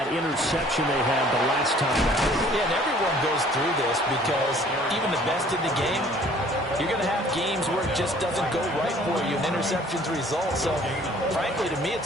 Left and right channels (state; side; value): normal; both; correlation 0.55